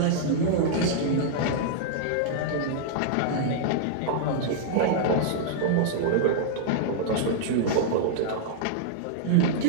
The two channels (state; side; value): different; both; correlation -0.02